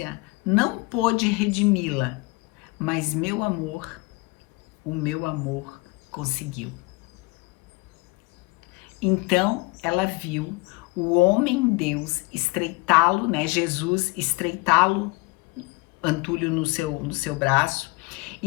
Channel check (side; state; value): right; quieter; 25.2 dB